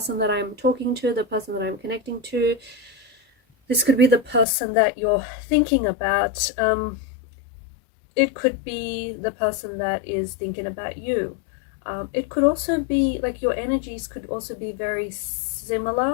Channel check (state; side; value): drops out; right; at 4.5 s